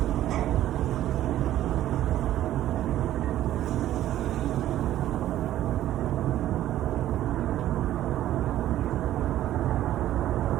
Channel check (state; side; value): quieter; left; 13.0 dB